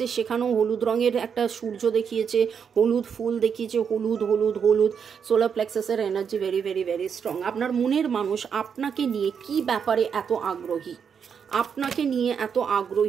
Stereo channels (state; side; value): quieter; left; 7.0 dB